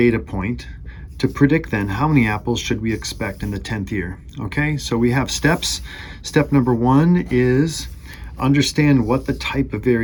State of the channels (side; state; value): both; identical; correlation 1.00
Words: point to predict then how many apples should we expect in the 10th year. Okay, so we have steps. Step number 1 is understand what the type of